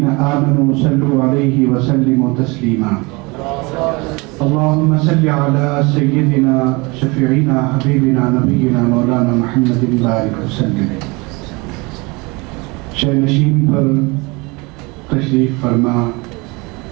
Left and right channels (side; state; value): left; quieter; 26.2 dB